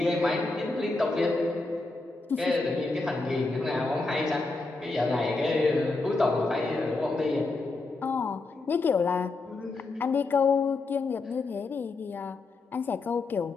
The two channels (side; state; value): right; quieter; 3.5 dB